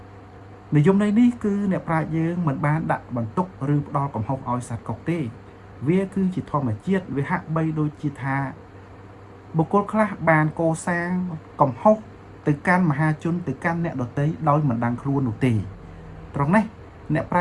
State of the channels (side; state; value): both; identical; correlation 1.00